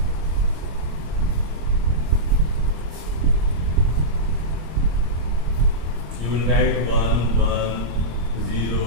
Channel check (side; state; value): left; late; 26 ms